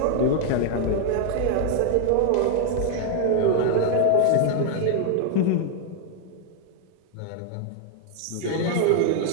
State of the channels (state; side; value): different; both; correlation 0.00